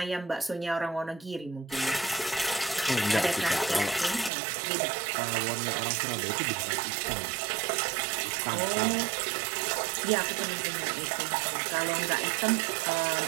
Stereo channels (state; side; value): drops out; left; at 4.3 s